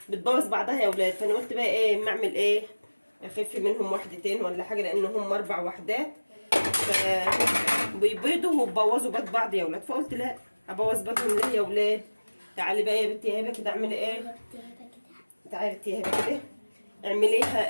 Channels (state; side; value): inverted; both; correlation -1.00